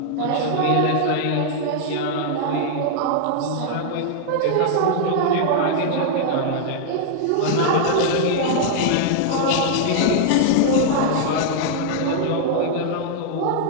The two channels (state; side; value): different; both; correlation -0.01